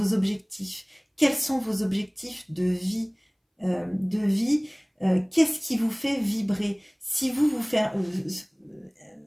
objectifs. Quels sont vos objectifs de vie, qu'est-ce qui vous fait vibrer? Si vous faire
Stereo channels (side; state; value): both; identical; correlation 1.00